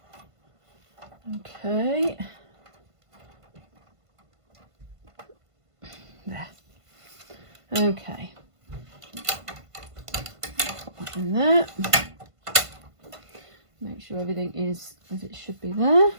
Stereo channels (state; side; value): late; left; 1.5 ms